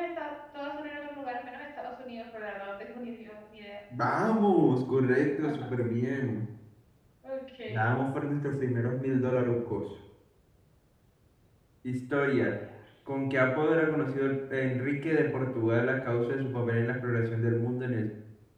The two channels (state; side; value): identical; both; correlation 1.00